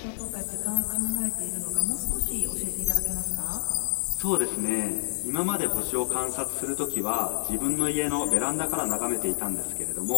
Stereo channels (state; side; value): silent; right; digital silence